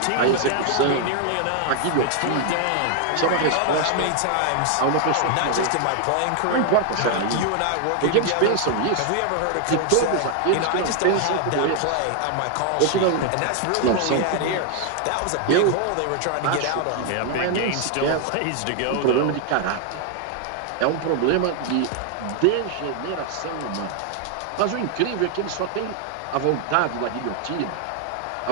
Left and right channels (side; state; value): both; different; correlation 0.00